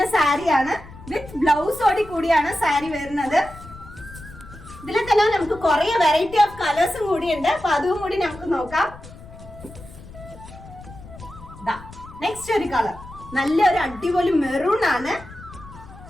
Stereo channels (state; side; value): noise; left; rumble, 17 dB below the sound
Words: സാരിയാണ്. വിത്ത് ബ്ലൗസോടി കൂടിയാണ് സാരി വരുന്നത്. ഇതിൽ തന്നെ നമുക്ക് കുറെ വെറൈറ്റി ഓഫ് കളേഴ്സും കൂടി ഉണ്ട്. അപ്പൊ അതും കൂടി നമുക്ക് നോക്കാം. നെക്സ്റ്റ് ഒരു കളർ നല്ലൊരു അടിപൊളി മെറൂൺ ആണ്.